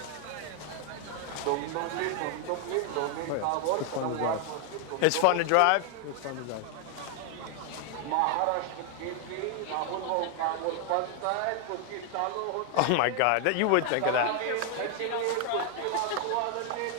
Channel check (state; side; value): different; both; correlation 0.00